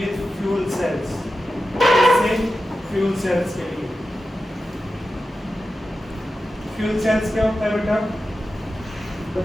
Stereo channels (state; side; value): normal; both; correlation 0.92